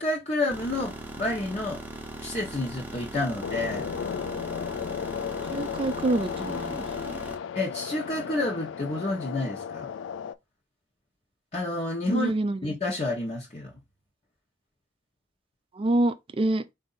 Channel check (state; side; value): normal; both; correlation 0.54